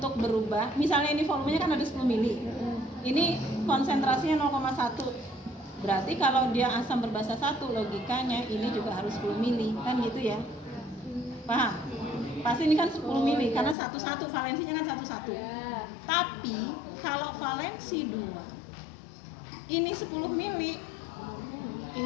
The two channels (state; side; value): drops out; right; at 13.8 s